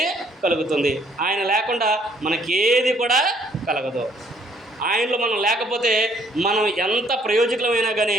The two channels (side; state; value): both; normal; correlation 0.64